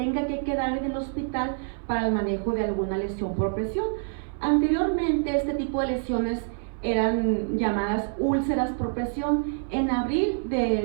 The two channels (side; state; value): left; silent; 59 dB below the other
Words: que quedar en el hospital para el manejo de alguna lesión por presión. Anteriormente este tipo de lesiones eran llamadas úlceras por presión. En abril